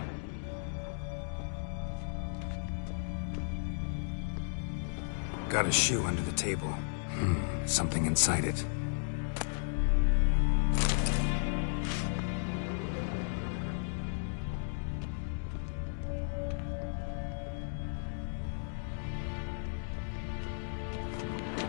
Got a shoe under the table. Something inside it.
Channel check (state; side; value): silent; right; digital silence